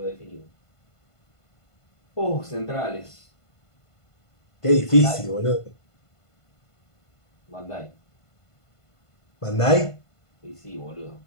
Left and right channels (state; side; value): late; right; 1.5 ms